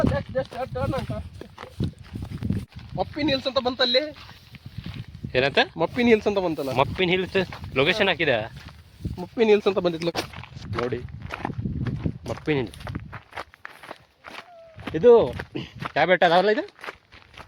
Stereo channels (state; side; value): identical; both; correlation 1.00